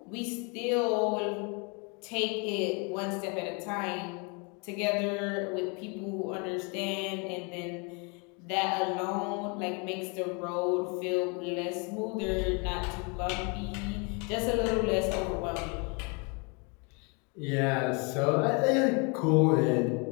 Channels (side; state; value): right; quieter; 33.1 dB